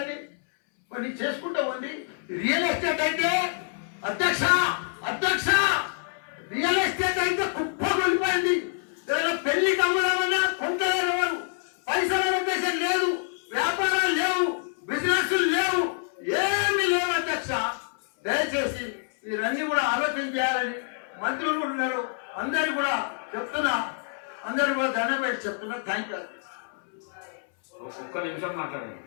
మరి చేసుకుంటా ఉంది. రియల్ ఎస్టేట్ అయితే అధ్యక్ష రియల్ ఎస్టేట్ అయితే కుప్ప కొలిపోయింది. ఏదైనా పెళ్లికి అమ్ముదామన్నా కొంటలేరు ఎవరు. పైసల ఉద్దేశం లేదు, వ్యాపారాలు లేవు, బిజినెస్ లేవు, ఏమీ లేవు అధ్యక్ష. దయచేసి మీరన్నీ కూడా ఆలోచన చేయాలని మంత్రులు కూడా ఉన్నారు. అందరు కూడా చెప్తున్నా, అందరు కూడా దండం పెట్టి చెప్తున్నా. థ్యాంక్ యూ ఒక్క నిమిషం మాట్లాడండి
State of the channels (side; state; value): right; silent; 60 dB below the other